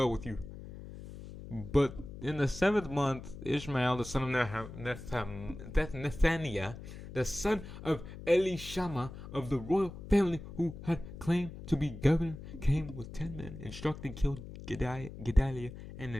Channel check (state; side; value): noise; left; hum, 12 dB below the sound